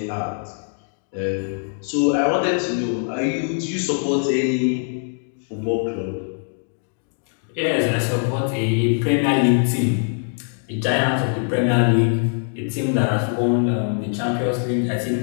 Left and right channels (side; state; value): right; silent; 62 dB below the other